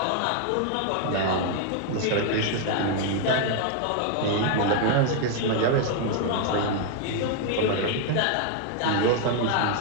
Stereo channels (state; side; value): different; both; correlation 0.00